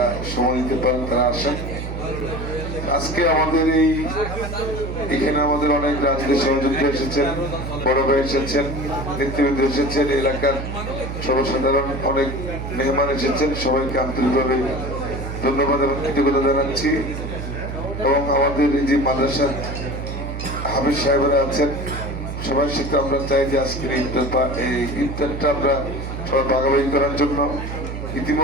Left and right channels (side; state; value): right; noise; hum, 6 dB below the sound